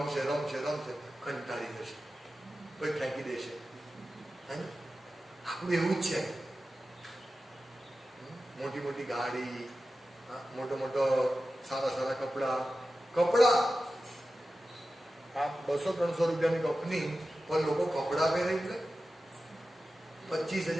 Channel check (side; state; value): both; normal; correlation 0.93